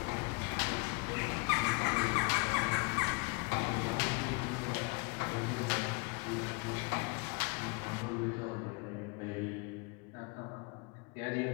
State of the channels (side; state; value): right; quieter; 27.9 dB